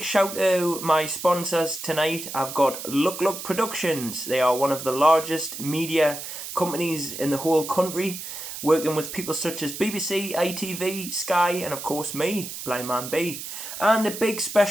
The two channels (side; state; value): right; noise; hiss, 9 dB below the sound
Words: shout to my sponsors tonight. I've got LUKLUKproductions. They are one of the largest media companies in the whole country, working with people such as BBC, ITV, Sky, and of course me, Blind Man B. And a big